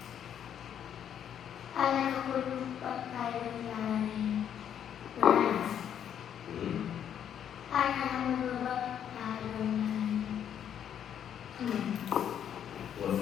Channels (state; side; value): quieter; right; 9.3 dB